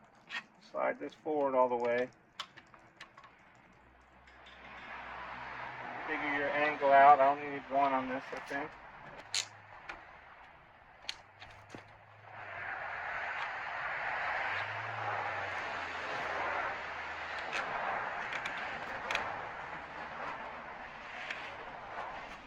Slide this forward all the way. Figure your angle out. I only need one on this, I think.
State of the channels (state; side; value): identical; both; correlation 1.00